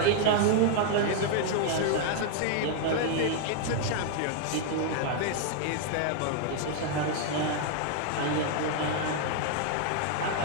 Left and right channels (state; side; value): different; both; correlation 0.00